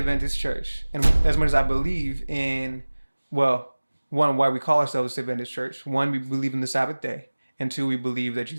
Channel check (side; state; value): both; inverted; correlation -1.00